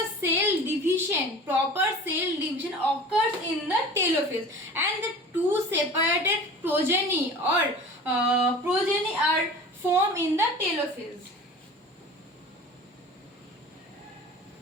proper cell division occurs in the telophase, and the two separated progeny are formed in the telophase.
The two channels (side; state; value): both; normal; correlation 0.39